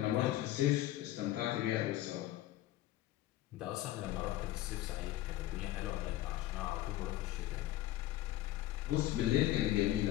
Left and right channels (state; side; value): quieter; right; 14.8 dB